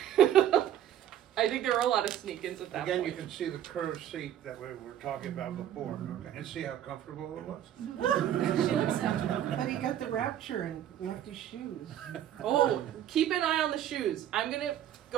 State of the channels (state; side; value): quieter; left; 11.1 dB